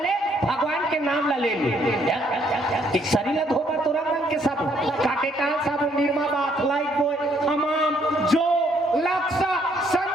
ले भगवान के नाम ला ले एक शरीर धोबर तो रंग के सब काटे काल सब निर्मा बात लाइक बॉय हमाम जो लक्ष्य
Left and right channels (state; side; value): normal; both; correlation 0.68